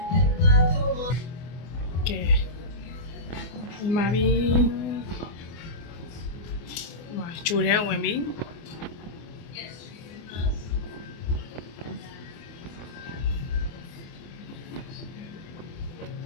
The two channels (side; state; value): right; late; 24 ms